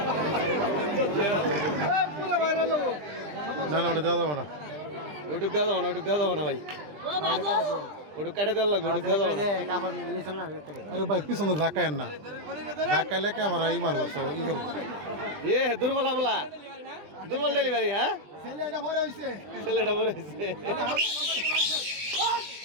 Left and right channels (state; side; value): late; left; 20 ms